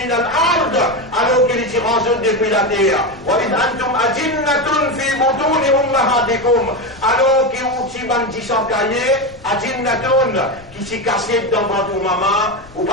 الأرض alors qu'il s'y range depuis la terre. وإذ أنتم أجنة في بطون أمهاتكم alors qu'il s'y bandit sans cahier, أجنة qui s'y cassait dans votre maman, ou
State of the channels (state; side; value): noise; left; rumble, 23 dB below the sound